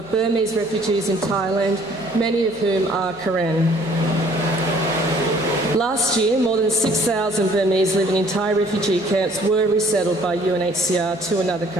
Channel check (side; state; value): right; noise; hum, 24 dB below the sound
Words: Burmese refugees in Thailand, many of whom are Karen. Last year, more than 6,000 Burmese living in Thai refugee camps were resettled by UNHCR to another